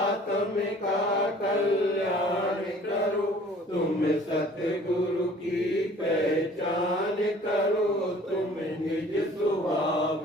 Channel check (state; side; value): normal; both; correlation 0.51